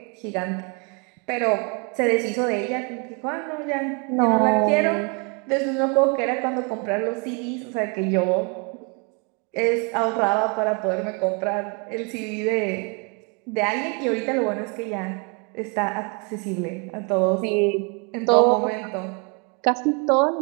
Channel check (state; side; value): quieter; left; 33.9 dB